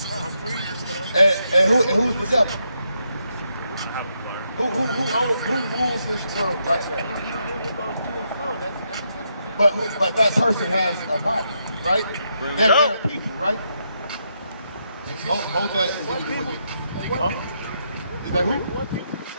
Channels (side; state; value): both; inverted; correlation -0.80